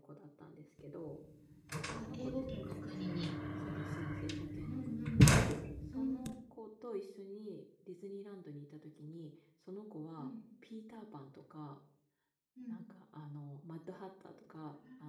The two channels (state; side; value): identical; both; correlation 1.00